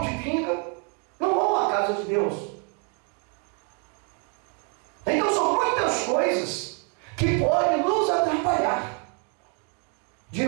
de pinga, não vão à casa de Deus. Então são muitas coisas que podem nos atrapalhar de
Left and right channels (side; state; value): left; quieter; 38.2 dB